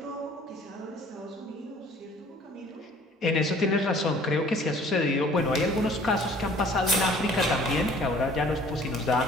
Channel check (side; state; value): both; normal; correlation 0.53